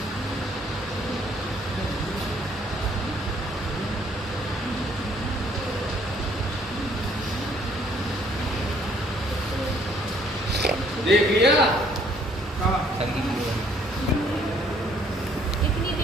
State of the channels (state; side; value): normal; both; correlation 0.63